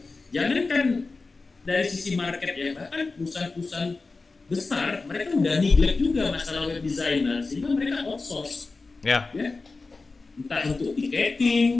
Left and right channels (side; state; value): right; quieter; 3.8 dB